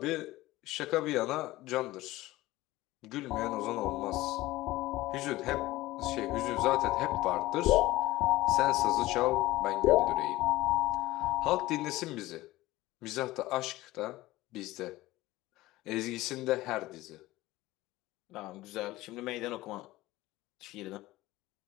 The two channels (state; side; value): quieter; right; 17.9 dB